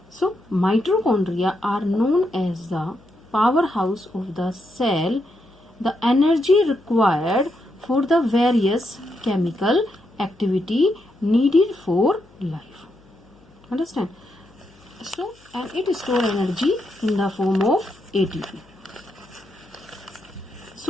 So mitochondria are known as the powerhouse of the cell. The energy required for the various chemical activity needed for life. Understand? So, and it stores energy in the form of ATP.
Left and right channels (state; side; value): noise; left; hum, 29 dB below the sound